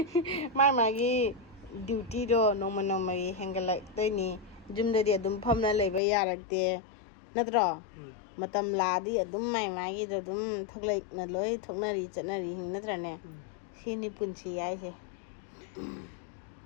ꯃꯥꯒꯤ ꯗ꯭ꯌꯨꯇꯤꯗꯣ ꯅꯣꯡꯃꯒꯤ ꯍꯦꯟꯒꯠꯂꯛꯇꯣꯏꯅꯤ ꯌꯨꯝꯗꯗꯤ ꯑꯗꯨꯝ ꯐꯝꯅ ꯂꯩꯕ ꯌꯥꯔꯛꯇꯦ ꯅꯠꯇ꯭ꯔꯣ ꯃꯇꯝ ꯂꯥꯛꯑꯗꯤ ꯑꯗꯨꯝ ꯃꯥꯒꯤꯗꯣ ꯑꯗꯨꯝ ꯊꯣꯛꯂꯛꯅ ꯂꯣꯏ ꯊꯣꯛꯅꯔꯤ ꯆꯠꯅꯔꯤ ꯅꯠꯇ꯭ꯔꯅꯦ ꯁꯤꯅꯤ ꯄꯨꯟꯁꯤ ꯍꯥꯏꯁꯦ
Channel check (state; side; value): drops out; right; at 6.0 s